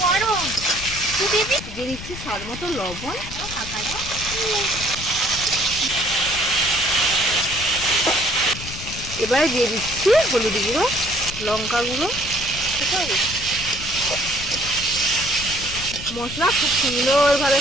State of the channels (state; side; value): noise; left; rumble, 11 dB below the sound